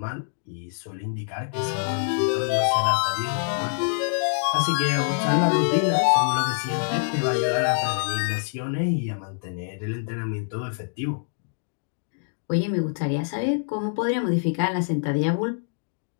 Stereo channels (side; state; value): right; silent; digital silence